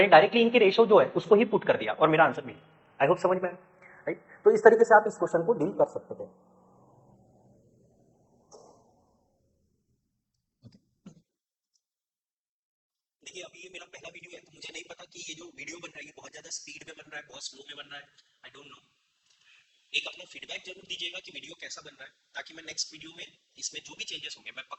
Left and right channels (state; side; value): identical; both; correlation 1.00